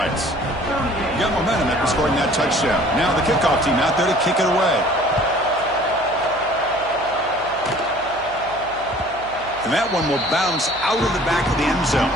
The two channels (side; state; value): right; noise; hum, 21 dB below the sound